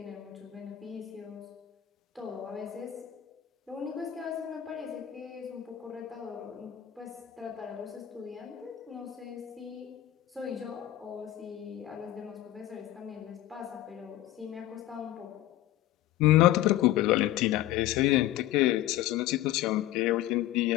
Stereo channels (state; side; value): quieter; right; 13.7 dB